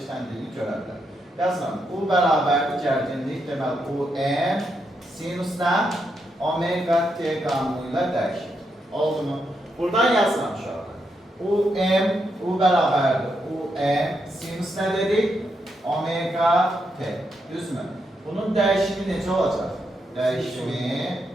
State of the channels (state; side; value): normal; both; correlation 0.81